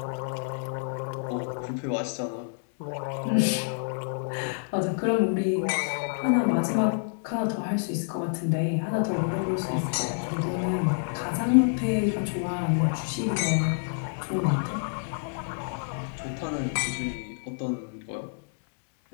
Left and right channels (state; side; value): silent; right; 59 dB below the other